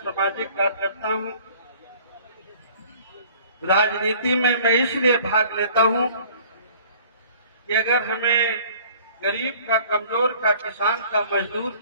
कार्यकर्ता हूं। राजनीति में मैं इसलिए भाग लेता हूं कि अगर हमें गरीब का, कमजोर का, किसान का, मजदूर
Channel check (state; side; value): inverted; both; correlation -0.51